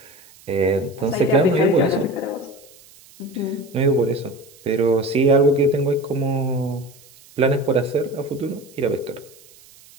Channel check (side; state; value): right; noise; hiss, 25 dB below the sound